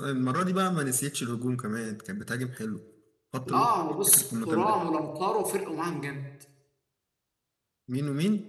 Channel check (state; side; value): identical; both; correlation 1.00